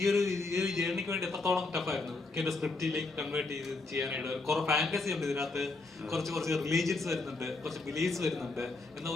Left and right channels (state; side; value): quieter; right; 3.5 dB